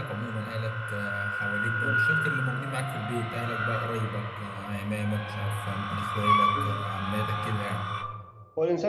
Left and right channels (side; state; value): both; identical; correlation 1.00